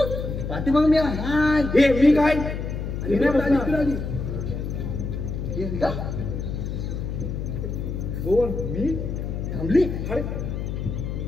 पाठीमाग मी हाय. हे मी काय? हे नाही बसणार. हे का? कोण मी थांबली अरे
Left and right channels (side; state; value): left; noise; hum, 4 dB below the sound